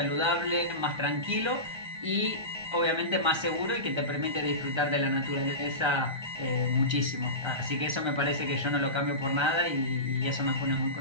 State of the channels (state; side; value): late; left; 1.3 ms